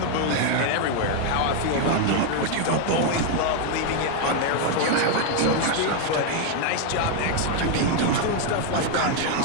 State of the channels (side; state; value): both; different; correlation 0.01